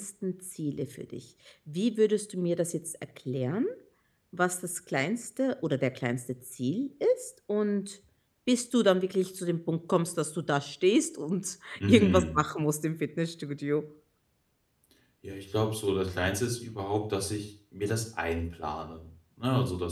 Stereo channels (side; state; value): both; identical; correlation 1.00